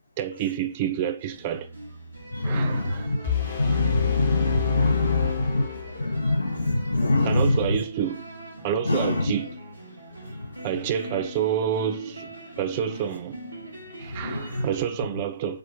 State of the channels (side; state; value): both; inverted; correlation -0.64